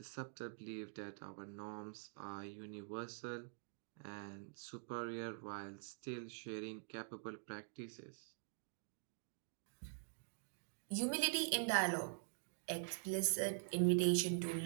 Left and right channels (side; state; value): left; silent; digital silence